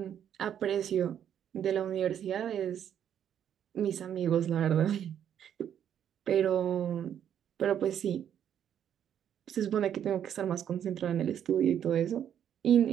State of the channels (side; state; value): left; quieter; 9.4 dB